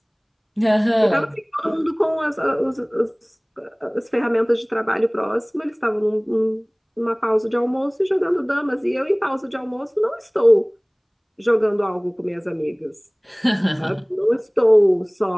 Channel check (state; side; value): identical; both; correlation 1.00